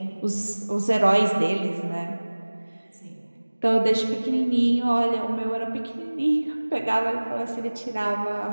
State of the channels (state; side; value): inverted; both; correlation -1.00